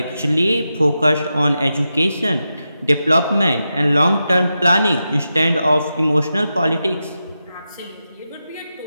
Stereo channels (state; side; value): inverted; both; correlation -0.89